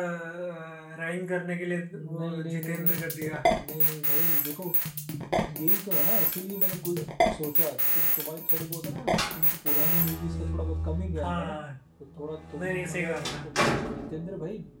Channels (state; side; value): identical; both; correlation 1.00